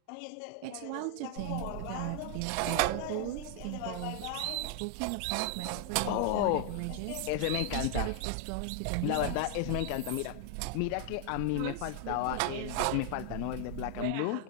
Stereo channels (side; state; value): both; different; correlation 0.00